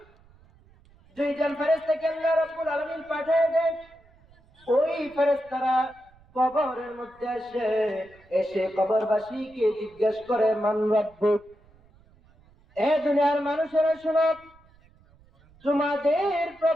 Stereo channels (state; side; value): noise; right; rumble, 29 dB below the sound